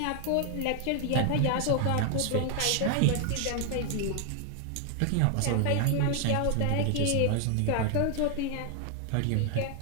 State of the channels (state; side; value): different; both; correlation 0.00